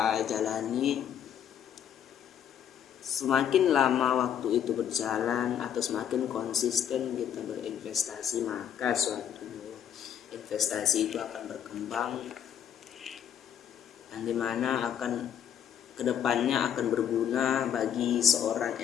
jalani. Semakin lama waktu itu berjalan atau semakin konsisten kita berinvestasi, maka suatu investasi itu akan berkembang, yang dimana akan kedepannya akan berguna bagi seorang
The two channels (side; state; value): right; quieter; 9.3 dB